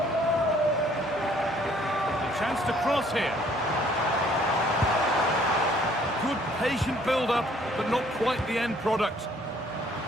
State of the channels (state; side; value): normal; both; correlation 0.60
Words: The chance to cross here. Good patient build-up, but not quite the end product.